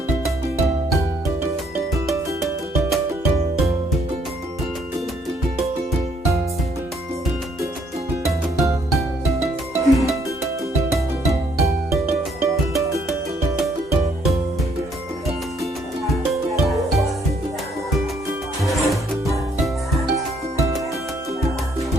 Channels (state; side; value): normal; both; correlation 0.68